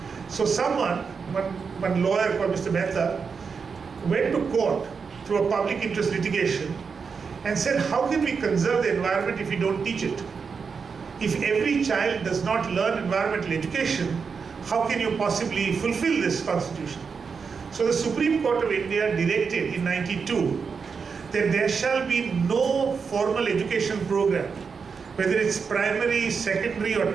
So one lawyer called Mr. Mehta went to court through a public interest litigation and said, how can we conserve the environment if we don't teach it? If every child does not learn environmental education, how can you possibly fulfill this constitution? So the Supreme Court of India directed in 92 that there shall be no formal education program, whether it's primary, secondary, or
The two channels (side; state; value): left; quieter; 5.6 dB